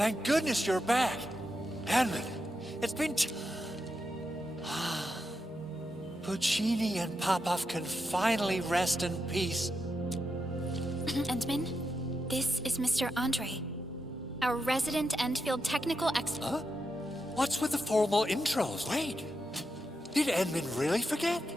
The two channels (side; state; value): both; normal; correlation 0.86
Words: goodness you're back. Edmund, it's been Puccini and Popov can finally rest in peace. Endman, this is Mr. Andre, our resident Endfield technical expert. Huh? What's with the formal intros? Wait, did Edmund really forget?